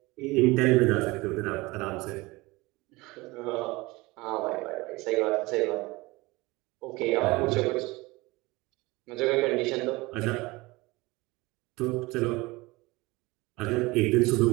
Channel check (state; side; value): quieter; left; 22.3 dB